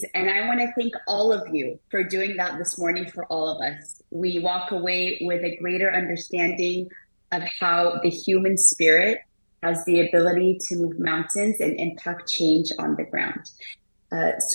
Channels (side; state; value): both; inverted; correlation -1.00